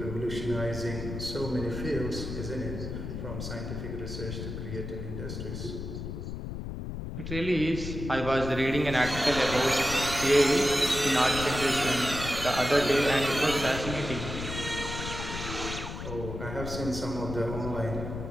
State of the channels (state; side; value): noise; left; rumble, 6 dB below the sound